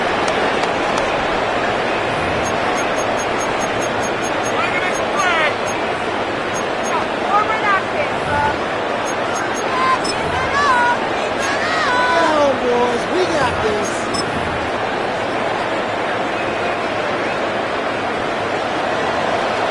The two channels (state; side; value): identical; both; correlation 1.00